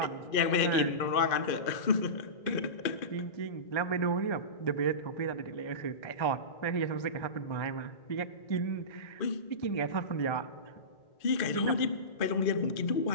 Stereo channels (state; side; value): late; right; 2.4 ms